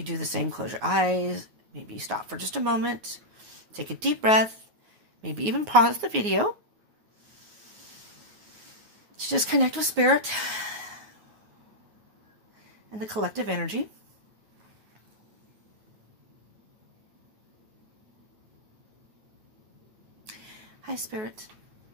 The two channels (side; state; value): left; late; 9.5 ms